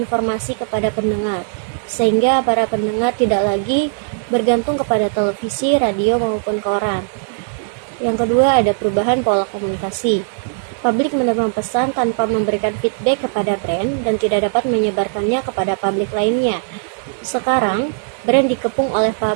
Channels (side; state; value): left; silent; digital silence